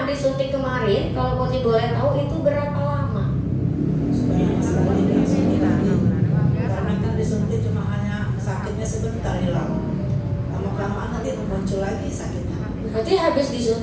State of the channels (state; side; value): identical; both; correlation 1.00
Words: disuntik kemarin, kalau Putri boleh tahu itu berapa lama? Sudah lama sekali tidak suntik lagi. Karena kan disuntik cuma hanya sakitnya sebentar hilang. Lama-kelamaan nanti muncul lagi sakitnya. Berarti habis